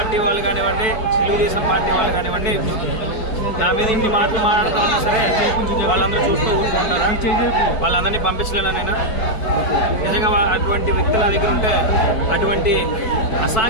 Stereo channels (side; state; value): right; late; 4.5 ms